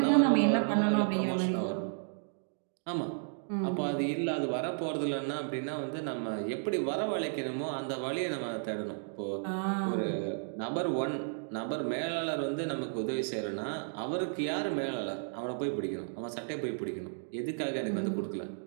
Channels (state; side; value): silent; left; digital silence